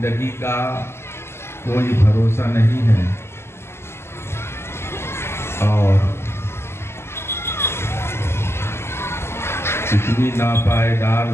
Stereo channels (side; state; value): right; late; 0.12 ms